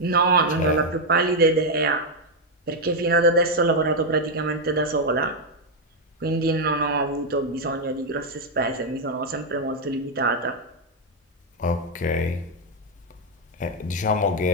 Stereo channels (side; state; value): both; normal; correlation 0.01